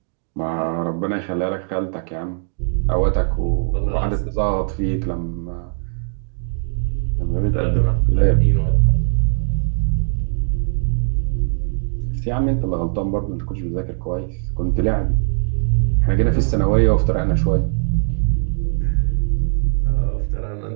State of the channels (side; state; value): left; silent; digital silence